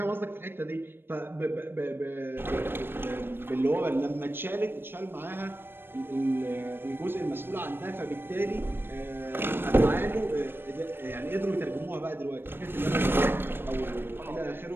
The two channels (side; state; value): left; late; 0.10 ms